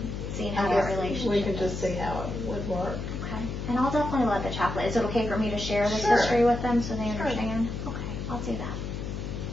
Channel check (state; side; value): noise; left; hum, 5 dB below the sound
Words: Seeing how I that guess relationship we can is. just see how it would work. Okay. And I'll definitely let the chaplain. Is it okay for me to share this Sure. history with them so they Sure. understand? Okay, I'll do that.